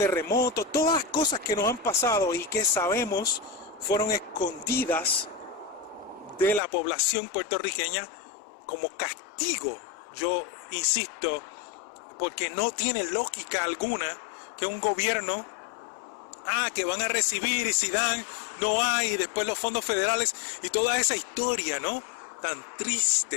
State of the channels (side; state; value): right; drops out; at 6.6 s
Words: todas las cosas que nos han pasado y que sabemos fueron escondidas de la población puertorriqueña como castigo. Yo insisto, porque no tiene lógica alguna que un gobierno que van a recibir, y si dan, no hay, y después los fondos federales y toda esa historia, ¿no? Tan